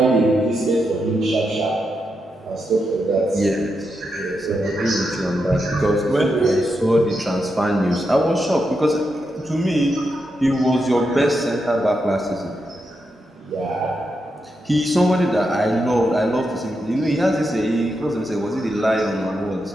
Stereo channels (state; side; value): normal; both; correlation 0.85